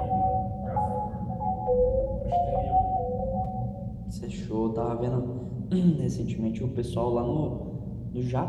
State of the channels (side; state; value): both; identical; correlation 1.00